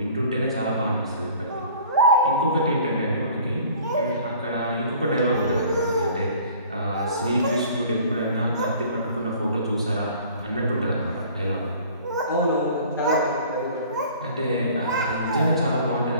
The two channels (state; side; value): inverted; both; correlation -0.49